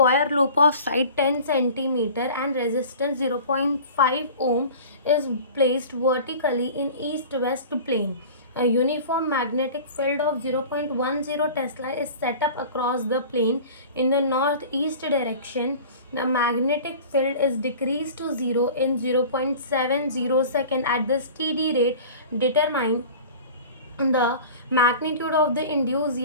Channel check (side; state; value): both; inverted; correlation -0.40